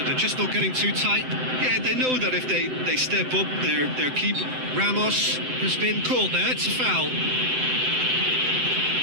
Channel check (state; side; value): late; left; 7.8 ms